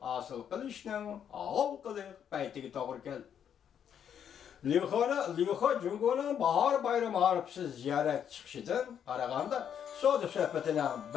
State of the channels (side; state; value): right; quieter; 8.7 dB